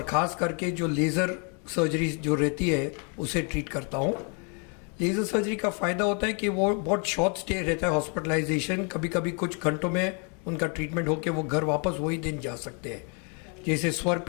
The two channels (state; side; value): quieter; right; 37.2 dB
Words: ख़ास करके जो लेज़र सर्जरी जो रहती है उसे ट्रीट करता हूँ। लेज़र सर्जरी का फ़ायदा होता है कि वो बहुत शॉर्ट स्टे रहता है हॉस्पिटलाइजेशन, कभी कभी कुछ घंटों में उनका ट्रीटमेंट होकर वो घर वापस वही दिन जा सकते हैं। जैसे स्वर